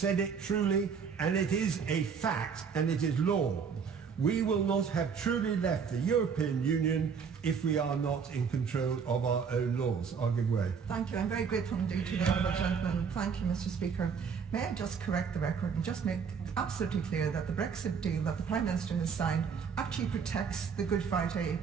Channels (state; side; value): quieter; left; 6.3 dB